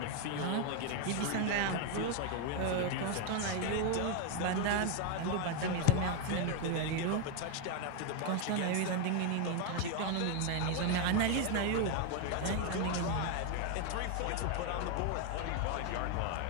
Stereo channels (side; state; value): both; different; correlation 0.01